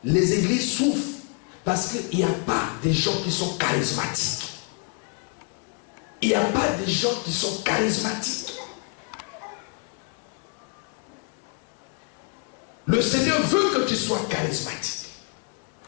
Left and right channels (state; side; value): quieter; right; 32.6 dB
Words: Les églises souffrent. Parce qu'il n'y a pas des gens qui sont charismatiques. Il n'y a pas des gens qui sont charismatiques. Le Seigneur veut que tu sois charismatique.